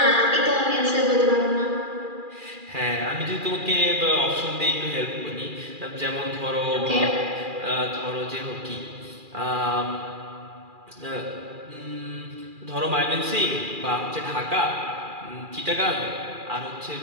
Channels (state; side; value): late; left; 2.4 ms